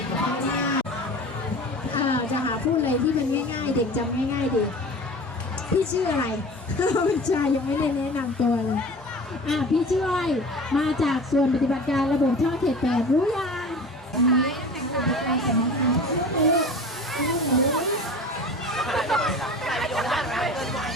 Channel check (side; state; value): both; normal; correlation 0.37